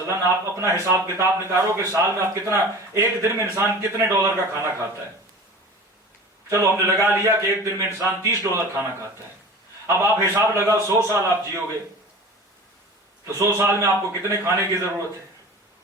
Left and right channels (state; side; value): normal; both; correlation 0.38